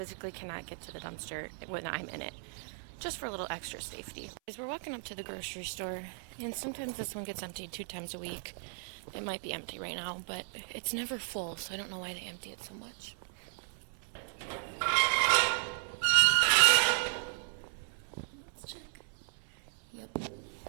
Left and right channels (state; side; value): silent; left; 54 dB below the other